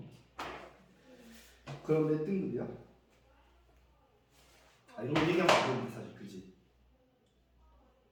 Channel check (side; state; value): both; identical; correlation 1.00